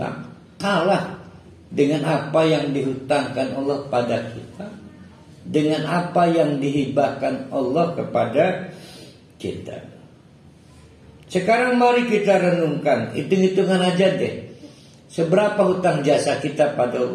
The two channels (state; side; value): identical; both; correlation 1.00